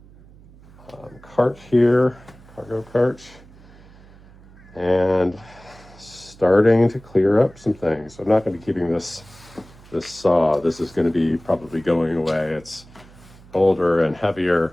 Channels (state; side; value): noise; right; hum, 23 dB below the sound